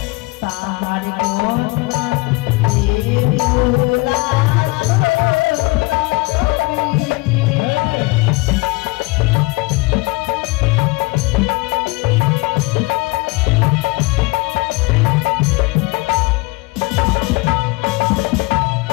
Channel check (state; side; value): quieter; right; 24.8 dB